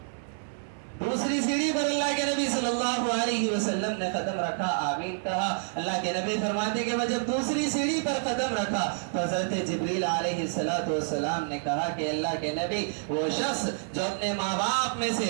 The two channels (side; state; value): left; silent; 59 dB below the other